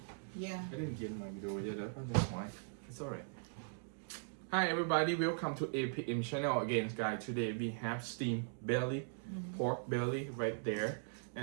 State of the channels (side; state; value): left; silent; digital silence